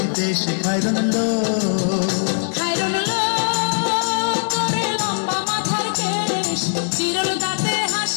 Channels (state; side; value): silent; right; digital silence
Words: দেশ খায়রন লো তোরে লম্বা মাথার কেশ চিরল দাঁতে